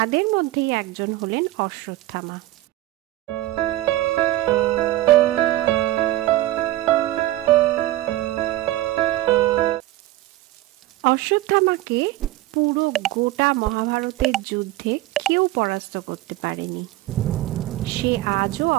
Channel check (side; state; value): left; quieter; 16.4 dB